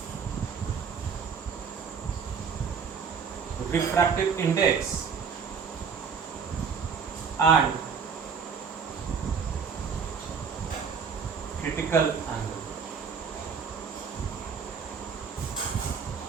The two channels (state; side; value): quieter; left; 6.2 dB